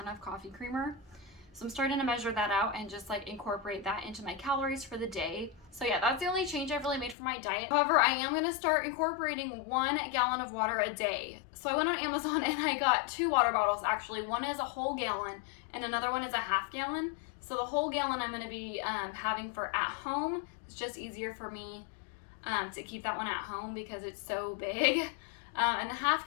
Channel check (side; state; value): right; drops out; at 7.2 s